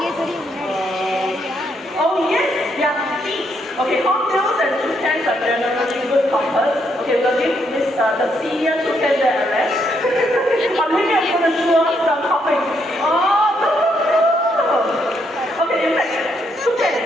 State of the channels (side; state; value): both; normal; correlation 0.75